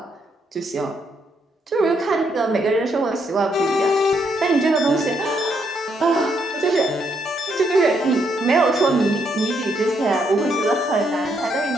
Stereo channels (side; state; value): both; normal; correlation 0.75